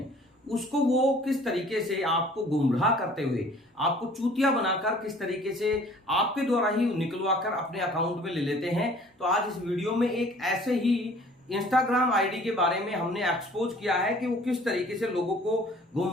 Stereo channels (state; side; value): normal; both; correlation 0.52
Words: उसको वो किस तरीके से आपको गुमराह करते हुए, आपको चूतिया बनाकर किस तरीके से आपके द्वारा ही निकलवा कर अपने अकाउंट में ले लेते हैं। तो आज इस वीडियो में एक ऐसे ही इंस्टाग्राम आईडी के बारे में हमने एक्सपोज किया है कि वो किस तरीके से लोगों को